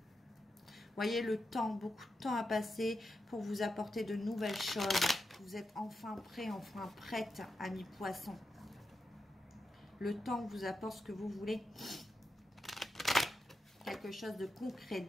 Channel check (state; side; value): normal; both; correlation 0.87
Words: Voyez le temps, beaucoup de temps à passer pour vous apporter de nouvelles choses. Vous êtes enfin prêt, enfin prête, amis poissons. Le temps vous apporte ce que vous voulez. Quelque chose de concret,